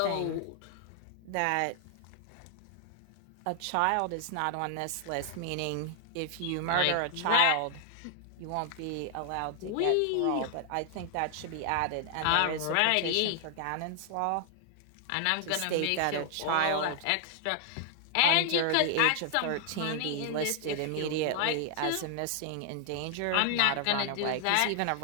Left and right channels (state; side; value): different; both; correlation 0.00